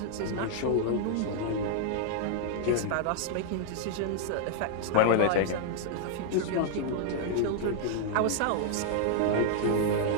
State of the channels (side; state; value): both; different; correlation -0.01